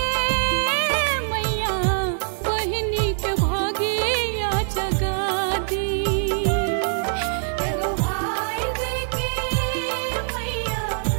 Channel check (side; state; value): left; silent; digital silence